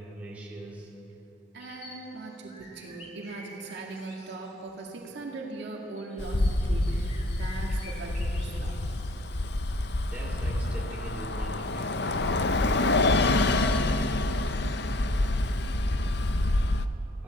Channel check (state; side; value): normal; both; correlation 0.56